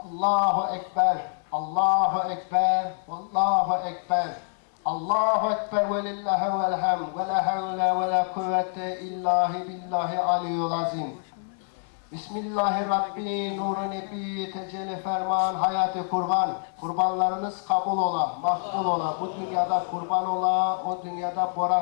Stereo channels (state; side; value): silent; right; 61 dB below the other